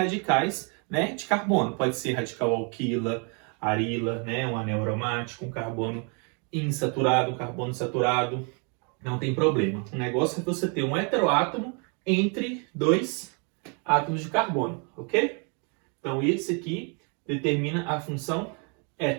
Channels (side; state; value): left; quieter; 36.3 dB